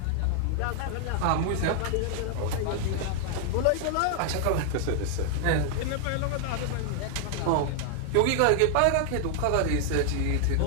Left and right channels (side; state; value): both; different; correlation 0.00